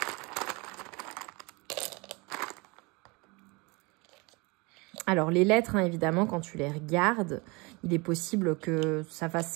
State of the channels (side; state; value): left; quieter; 26.9 dB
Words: Alors, les lettres, hein, évidemment, quand tu les regardes, il est possible que ça